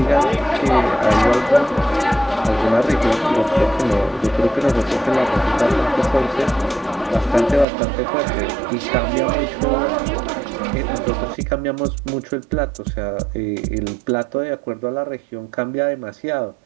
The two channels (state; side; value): drops out; left; at 7.7 s